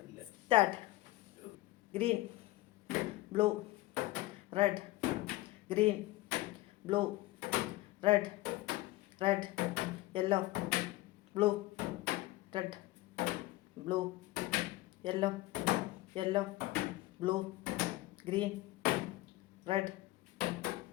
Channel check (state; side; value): quieter; right; 18.1 dB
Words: start. Green, blue, red, green, blue, red, yellow, blue, red, blue, yellow, blue, green, red,